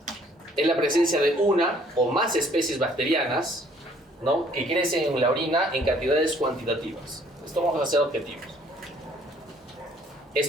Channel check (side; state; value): both; normal; correlation 0.60